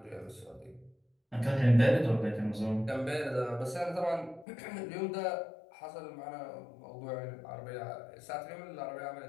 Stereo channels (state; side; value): drops out; right; at 4.5 s